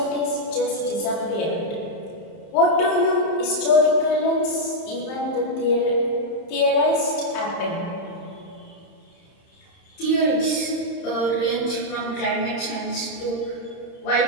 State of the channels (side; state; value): right; late; 31 ms